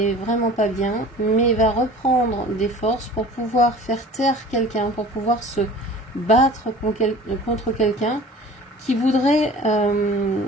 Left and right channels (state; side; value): normal; both; correlation 0.43